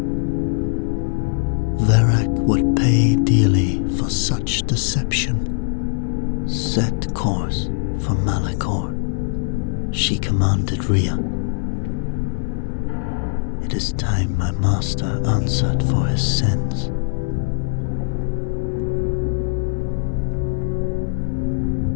Verac would pay dearly for such deception. "Set course for Malachor," she commanded Rhea. "It is time my master answered for his sins."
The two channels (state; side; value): silent; right; digital silence